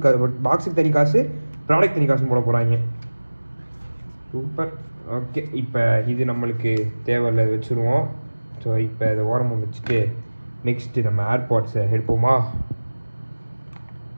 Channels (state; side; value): inverted; both; correlation -1.00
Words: தனி காசு, ப்ராடக்ட் தனி காசுன்னு போட போகிறாங்க. சூப்பர். ஓகே, இப்போ இது நம்மளுக்கு தேவையில்லை, வச்சுருவோம். ஸோ இப்போ இதை ஓரமாக வச்சுட்டு நெக்ஸ்ட்டு நம்ம ஏர்பாட்ஸை எடுப்போமா.